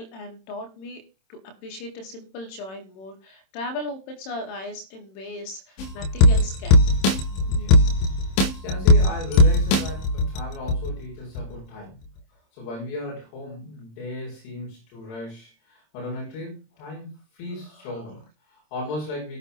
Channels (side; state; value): right; late; 26 ms